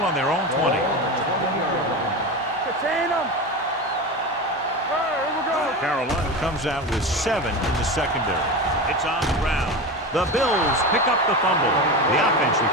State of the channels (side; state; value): both; normal; correlation 0.24